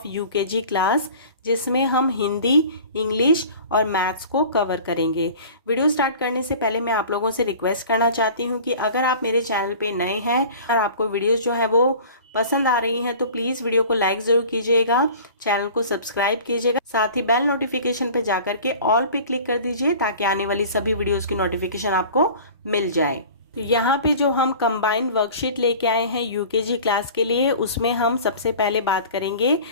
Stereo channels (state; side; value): inverted; both; correlation -0.42